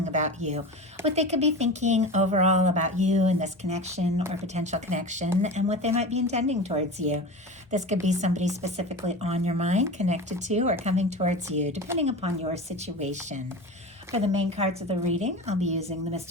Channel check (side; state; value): both; normal; correlation 0.30